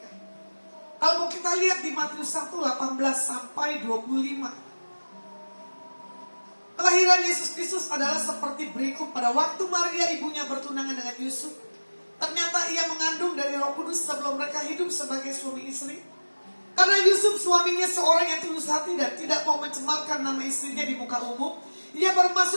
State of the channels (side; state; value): both; inverted; correlation -1.00